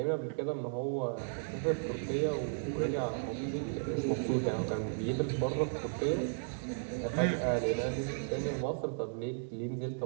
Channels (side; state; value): left; silent; digital silence